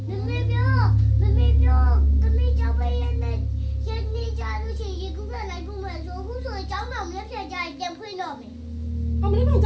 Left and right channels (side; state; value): both; identical; correlation 1.00